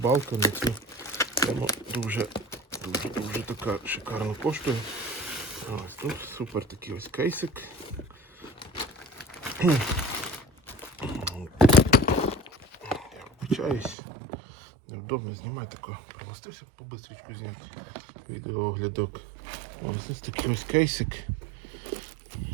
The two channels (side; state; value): left; drops out; at 14.0 s